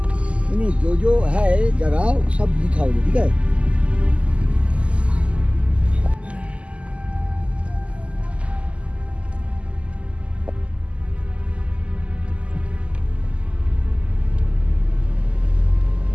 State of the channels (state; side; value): late; left; 0.057 ms